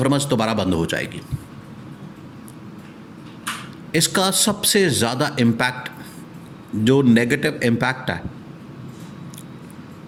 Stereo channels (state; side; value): identical; both; correlation 1.00